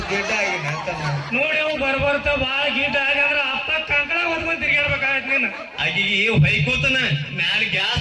ಗಿಡ್ಡ ಆಗಿನ ತಮ್ಮ. ನೋಡಿ ಅವ್ ಬರ್ಬರ್ತ ಬಾಳ ಗೀಟ ಆಗಂದ್ರ ಅಪ್ಪ ಕಂಕಣ ಹೊತ್ಕೊಂಡ್ ತಿರ್ಗಾಡ್ಬೇಕಾಗತ್ ನೀನು. ಆಕಿಗೆ ಹೊಯ್ಕೋತನ ಮ್ಯಾಲ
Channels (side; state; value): both; identical; correlation 1.00